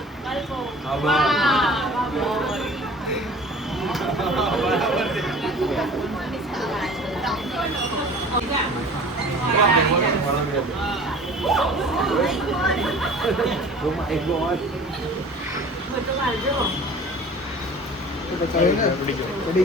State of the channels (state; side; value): normal; both; correlation 0.44